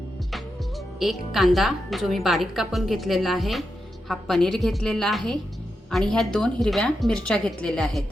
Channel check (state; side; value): normal; both; correlation 0.87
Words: 1 कांदा जो मी बारीक कापून घेतलेला आहे. हा पनीर घेतलेला आहे आणि ह्या 2 हिरव्या मिरच्या घेतलेल्या आहेत.